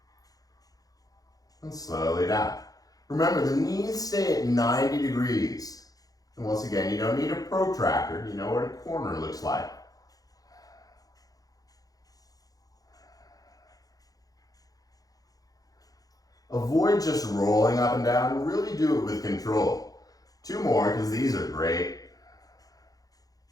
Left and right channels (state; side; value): late; right; 0.18 ms